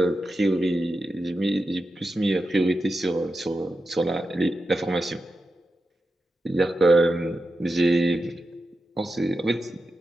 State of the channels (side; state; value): both; normal; correlation 0.90